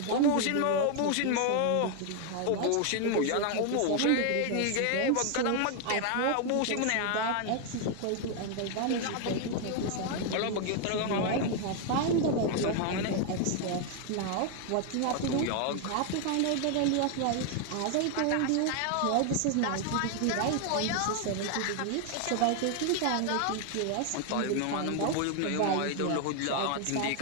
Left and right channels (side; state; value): both; different; correlation 0.01